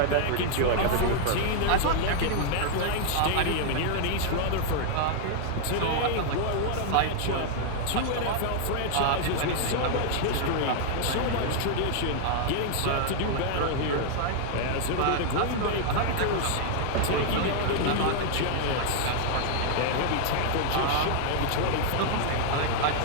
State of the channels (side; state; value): both; different; correlation 0.00